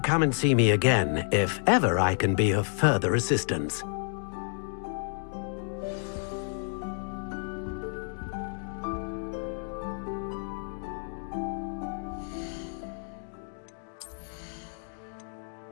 and see me again if ever I can be of further assistance.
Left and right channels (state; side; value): silent; right; 55 dB below the other